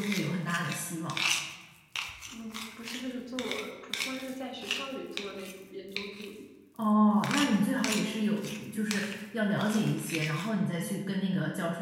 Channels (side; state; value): both; identical; correlation 1.00